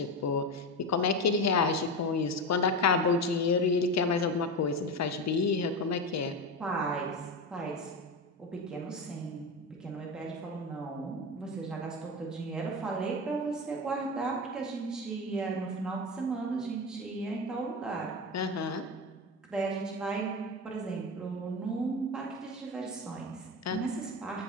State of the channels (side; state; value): both; normal; correlation 0.20